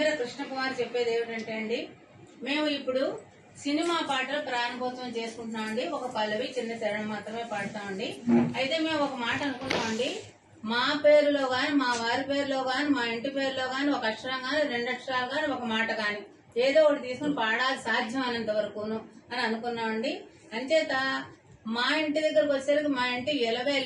కృష్ణకుమార్ చెప్పేది ఏమిటంటే అండి, మేము ఇప్పుడు సినిమా పాటలు ప్రారంభోత్సవం చేసుకుంటున్నామండి. ఒక పల్లవి చిన్న చరణం మాత్రమే పాడతామండి. అయితే మేము ఒక మాట అనుకుంటామండి, మా పేరులో గాని మా వారి పేరులో గాని మా ఇంటి పేరులో గాని ఒక అక్షరం గాని 2 అక్షరాలు గాని ఒక మాట గాని ఏదో ఒకటి తీసుకుని పాడాలి సాధ్యం అయినంత వరకును అని అనుకున్నామండి. అంచేత మా ఇంటి దగ్గరకు వచ్చేసరికి మా ఇంటి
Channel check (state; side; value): identical; both; correlation 1.00